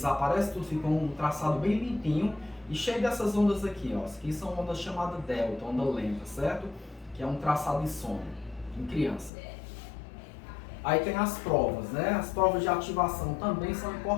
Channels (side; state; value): right; drops out; at 9.3 s